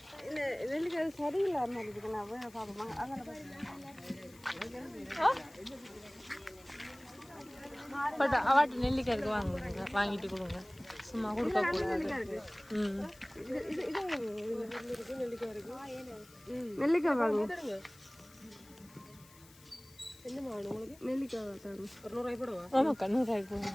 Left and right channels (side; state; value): left; noise; hiss, 24 dB below the sound